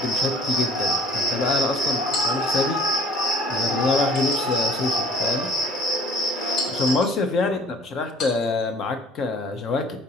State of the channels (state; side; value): normal; both; correlation 0.51